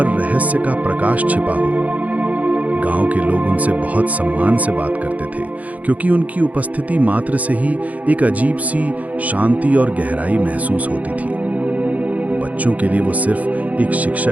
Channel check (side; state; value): left; late; 0.073 ms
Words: रहस्य का प्रकाश छिपा हो। गांव के लोग उनसे बहुत सम्मान से बात करते थे, क्योंकि उनकी उपस्थिति मात्र से ही एक अजीब सी शांति और गहराई महसूस होती थी। बच्चों के लिए वो सिर्फ एक